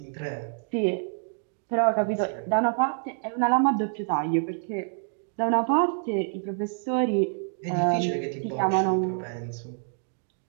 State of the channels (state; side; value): silent; left; digital silence